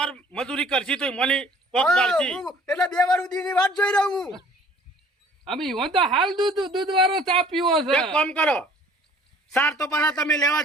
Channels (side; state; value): both; normal; correlation 0.53